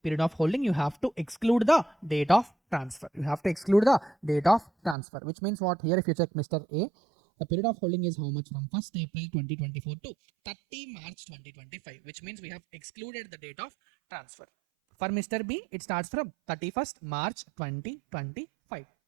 period of holding, you have to exclude the date of transfer. Which means what? Here if you check Mr. A, the period of holding is how much? From 1st April 2024 to 30 March 2025, which means we have excluded the date of transfer. For Mr. B, it starts from 31st March 2025.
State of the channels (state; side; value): drops out; left; at 5.0 s